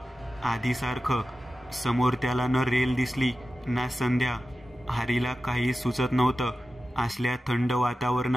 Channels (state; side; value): normal; both; correlation 0.93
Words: आधीसारखं. समोर त्याला न रेल दिसली ना संध्या. हरीला काही सुचत नव्हतं. असल्या थंड